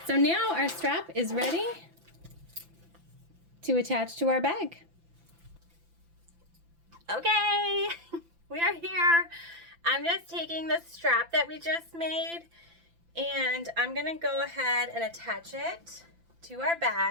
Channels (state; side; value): late; left; 5.9 ms